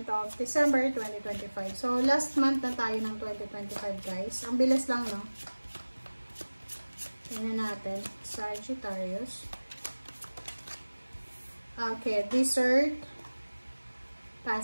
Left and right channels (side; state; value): both; inverted; correlation -1.00